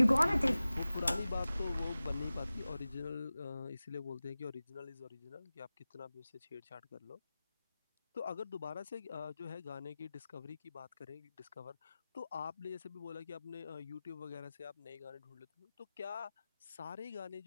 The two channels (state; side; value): inverted; both; correlation -0.97